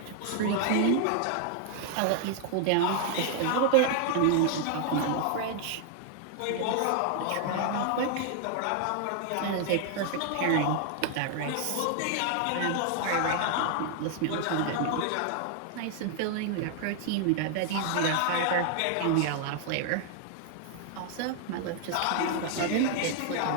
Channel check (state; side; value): different; both; correlation 0.00